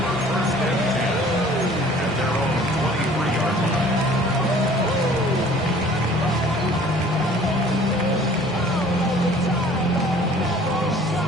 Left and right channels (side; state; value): both; normal; correlation 0.51